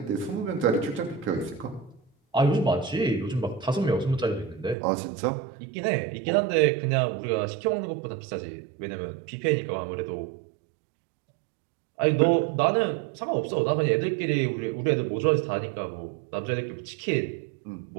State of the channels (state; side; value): drops out; left; at 4.8 s